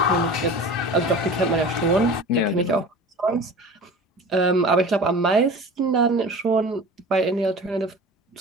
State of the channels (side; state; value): both; normal; correlation 0.37